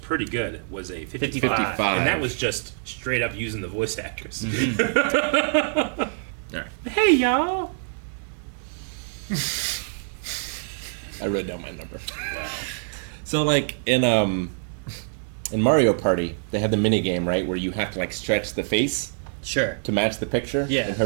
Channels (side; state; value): left; silent; 56 dB below the other